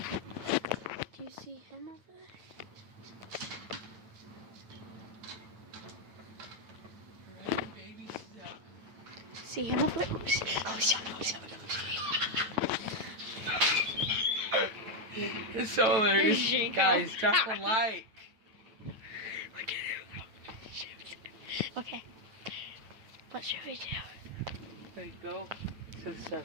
Do you see him over there? See him over there? It's so hilarious. Guys, drop a like. Look at him. Shoot. Okay. What should we do? There you go. To the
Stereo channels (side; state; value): left; late; 9.0 ms